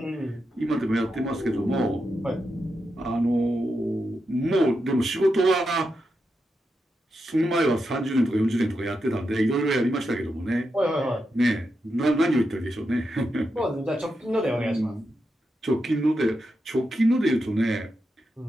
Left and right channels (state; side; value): normal; both; correlation 0.86